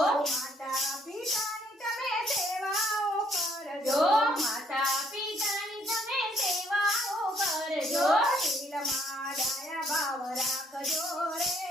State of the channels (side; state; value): both; normal; correlation 0.67